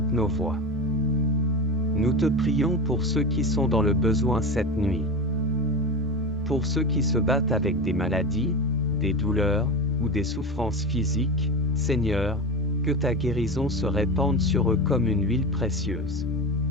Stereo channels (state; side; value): normal; both; correlation 0.23